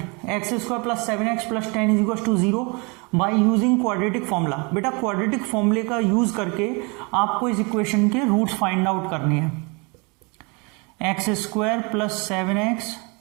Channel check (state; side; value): quieter; left; 30.4 dB